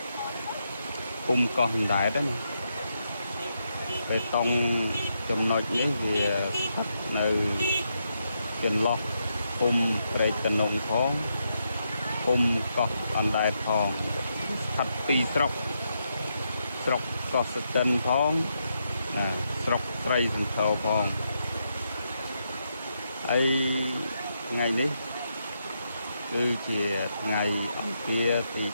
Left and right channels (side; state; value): both; inverted; correlation -0.81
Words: ភូមិកោះអណ្ដែតណាបេតុងចំណុចនេះវាស្ថិតនៅចន្លោះភូមិព្រែកតំណងផងភូមិកោះអណ្ដែតផងស្ថិតពីរស្រុកកោះស្ទឹងផងស្រុកស្រីសន្ធរផងហើយថ្ងៃនេះគឺជាថ្ងៃអង្គារទី